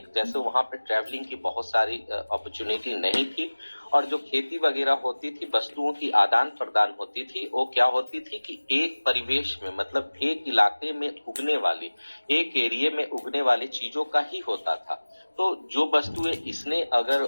जैसे वहां पे ट्रैवलिंग की बहुत सारी अपॉर्चुनिटी नहीं थी, और जो खेती वगैरह होती थी, वस्तुओं की आदान प्रदान होती थी, वो क्या होती थी कि एक परिवेश में, मतलब एक इलाके में उगने वाली, एक एरिया में उगने वाली चीजों का ही होता था। तो जो वस्तुएं इसने अगर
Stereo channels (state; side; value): inverted; both; correlation -1.00